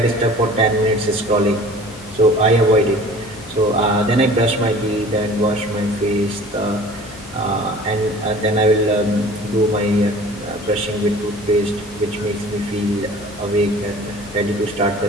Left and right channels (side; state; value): left; noise; hum, 21 dB below the sound